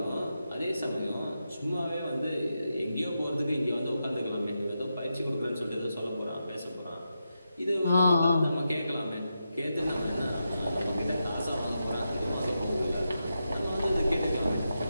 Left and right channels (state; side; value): inverted; both; correlation -0.87